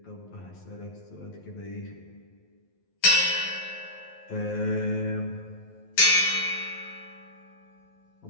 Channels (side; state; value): right; late; 11 ms